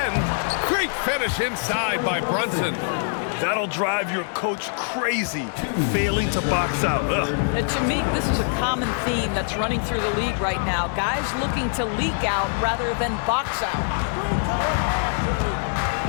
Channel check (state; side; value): silent; right; digital silence